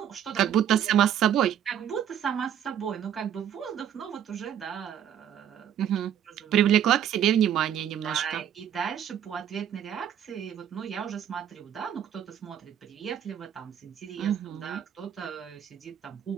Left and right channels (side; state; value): left; quieter; 9.7 dB